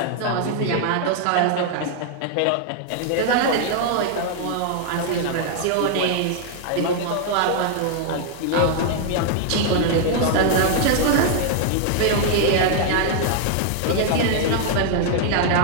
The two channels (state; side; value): different; both; correlation 0.00